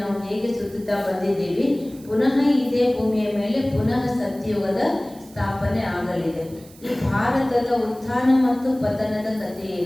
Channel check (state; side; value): noise; right; hiss, 24 dB below the sound